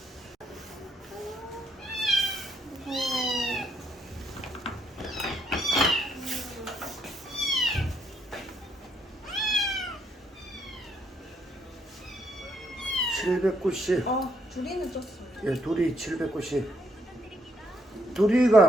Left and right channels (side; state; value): both; normal; correlation 0.73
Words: 790. 둘이는 쪘어요. 예, 둘이 790.